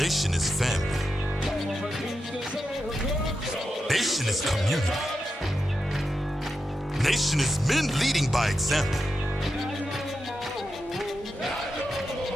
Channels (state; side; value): normal; both; correlation 0.88